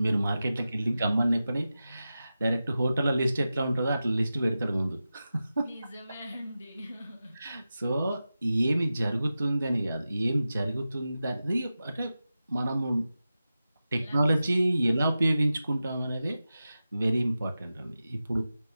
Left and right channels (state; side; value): inverted; both; correlation -0.93